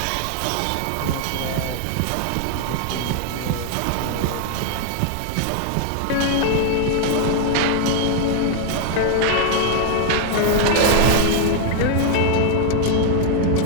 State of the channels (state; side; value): different; both; correlation 0.00